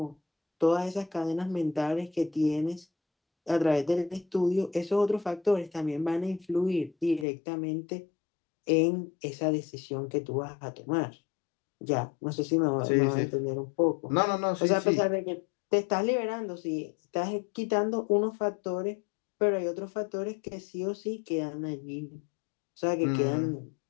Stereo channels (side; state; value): right; drops out; at 7.2 s